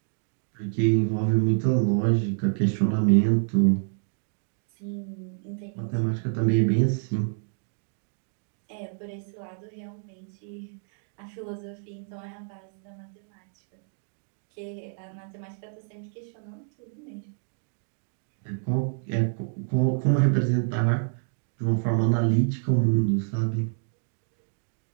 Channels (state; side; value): silent; left; digital silence